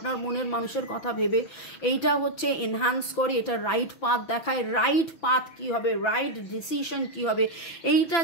মনের মানুষের কথা ভেবে এইটা হচ্ছে এনহ্যান্স করে, এটা রাইট পাথ দেখায়। রাইট পাথ কি হবে, রাইট ডিসিশন কি হবে, এইটা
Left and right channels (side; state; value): right; late; 6.0 ms